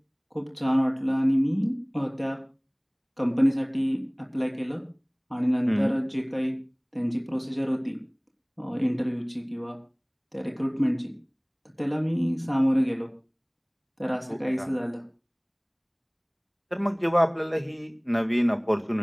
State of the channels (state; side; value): identical; both; correlation 1.00